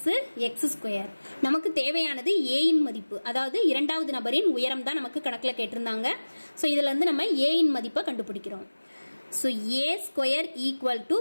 x ஸ்கொயர். நமக்கு தேவையானது a இன் மதிப்பு, அதாவது இரண்டாவது நபரின் உயரம் தான் நமக்கு கணக்குல கேட்டிருந்தாங்க. ஸோ இதுல இருந்து நம்ம a இன் மதிப்பை கண்டுபிடிக்கிறோம். So a square equal to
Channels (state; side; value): inverted; both; correlation -1.00